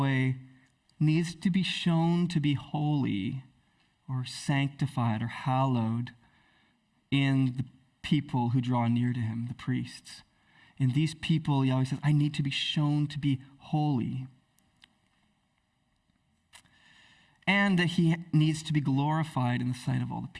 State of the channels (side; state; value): both; identical; correlation 1.00